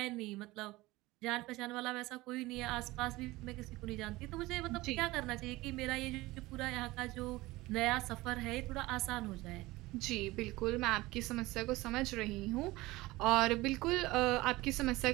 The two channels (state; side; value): quieter; left; 19.8 dB